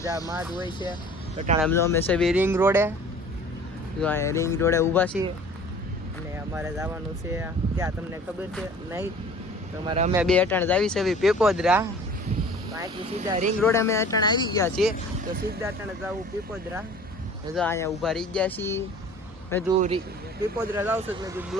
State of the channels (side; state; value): both; normal; correlation 0.46